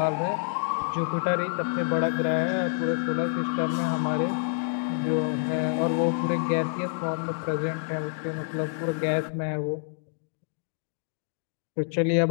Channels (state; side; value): silent; right; digital silence